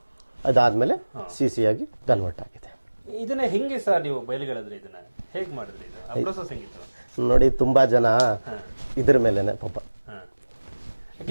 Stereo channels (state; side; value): inverted; both; correlation -1.00